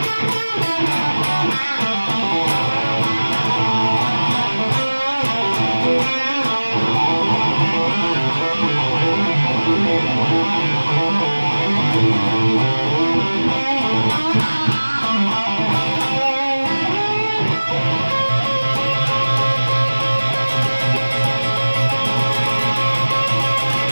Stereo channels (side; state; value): both; inverted; correlation -1.00